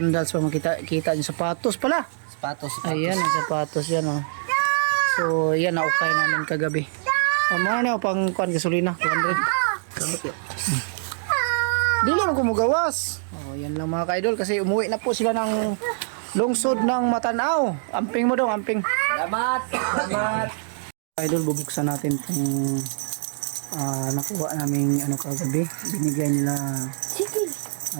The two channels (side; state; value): left; silent; digital silence